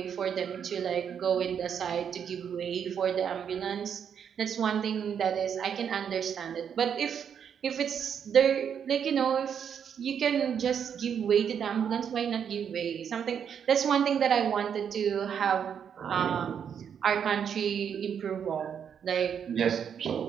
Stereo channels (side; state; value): left; quieter; 7.9 dB